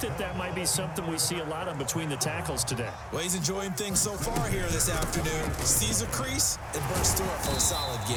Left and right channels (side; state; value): both; identical; correlation 1.00